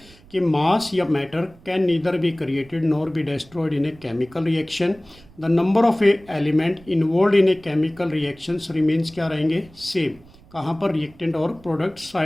कि मास या matter can neither be created nor be destroyed in a chemical reaction, the number of a element involve in a chemical reactions remains क्या रहेंगे, same. कहाँ पर, reactant और product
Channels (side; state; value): right; noise; rumble, 25 dB below the sound